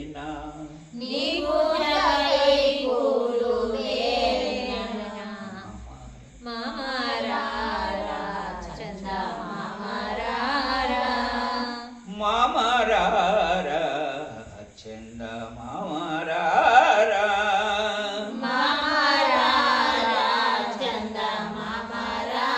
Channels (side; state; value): both; identical; correlation 1.00